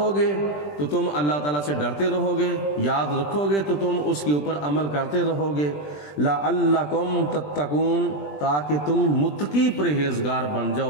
گے تو تم اللہ تعالیٰ سے ڈرتے رہو گے، یاد رکھو گے تو تم اس کے اوپر عمل کرتے رہو گے۔ لَعَلَّكُمْ تَتَّقُونَ، تاکہ تم متقی پرہیزگار بن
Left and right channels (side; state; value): right; late; 20 ms